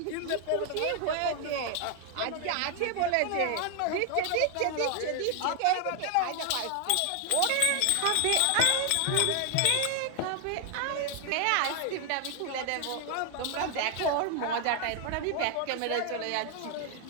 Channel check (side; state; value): both; different; correlation 0.00